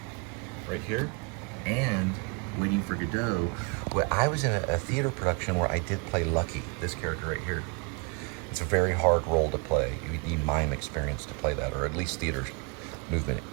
right here, and Waiting for Godot. Well, I was in a theater production where I did play Lucky, this character right here. It's a very hard role to play. You need mime experience to play that, or at least theater movement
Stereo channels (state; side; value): quieter; left; 31.2 dB